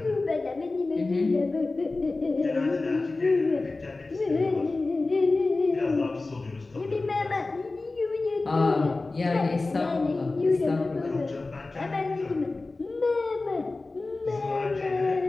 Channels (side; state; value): right; quieter; 3.4 dB